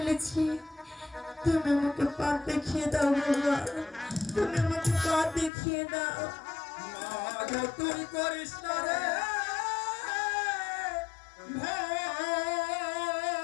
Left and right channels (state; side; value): drops out; right; at 5.5 s